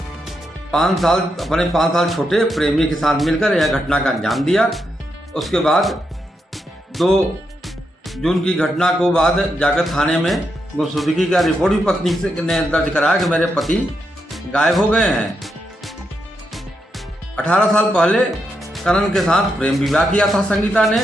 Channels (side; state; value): both; normal; correlation 0.83